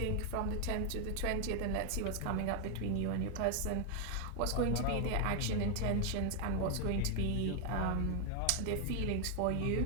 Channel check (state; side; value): different; both; correlation 0.00